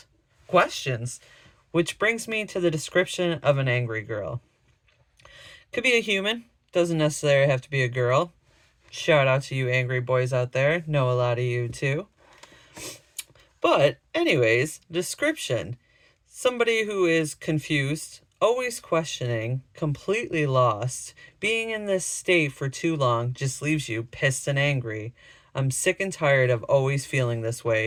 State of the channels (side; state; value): both; identical; correlation 1.00